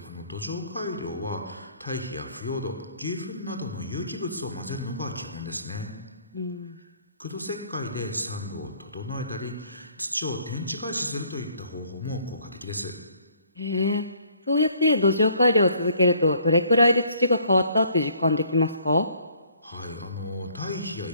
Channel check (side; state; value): both; inverted; correlation -0.61